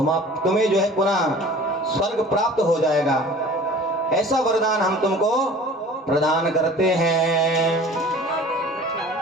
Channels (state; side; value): normal; both; correlation 0.46